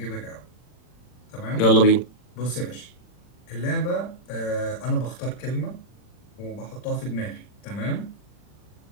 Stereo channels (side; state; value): right; late; 40 ms